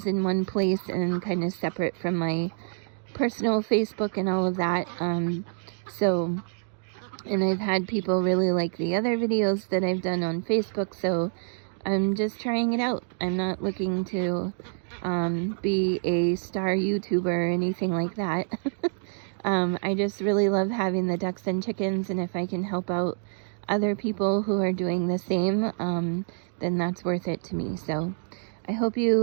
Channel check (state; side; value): silent; left; digital silence